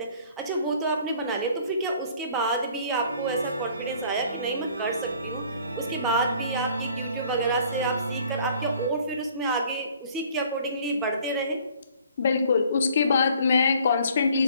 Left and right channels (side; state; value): both; inverted; correlation -0.55